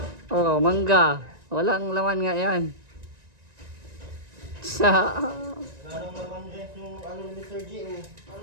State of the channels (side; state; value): left; late; 1.9 ms